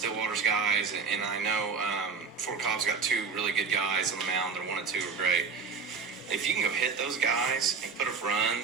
guys, and I know Fort Cobb's got 2 really good guys on the mound. Their 1 and 2 are great. If you can go hit those guys and put up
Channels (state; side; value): quieter; left; 5.1 dB